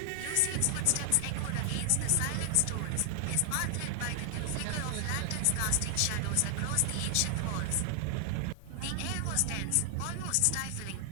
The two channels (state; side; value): different; both; correlation 0.00